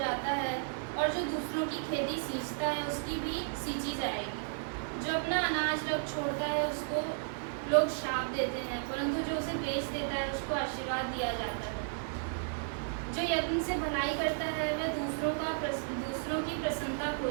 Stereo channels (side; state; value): left; silent; digital silence